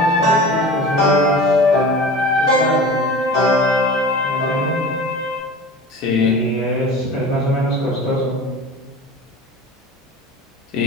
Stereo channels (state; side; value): normal; both; correlation 0.36